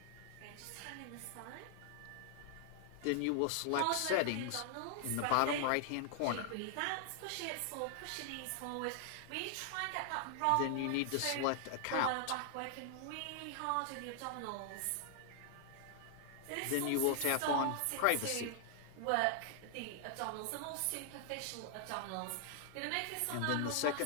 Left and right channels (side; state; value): both; different; correlation 0.00